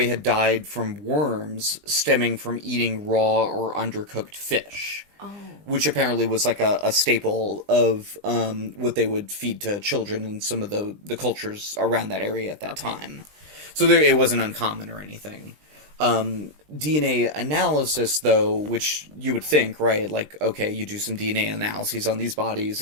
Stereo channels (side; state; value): left; late; 20 ms